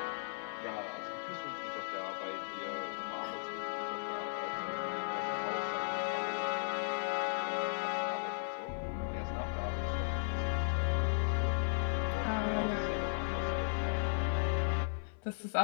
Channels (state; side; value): silent; right; digital silence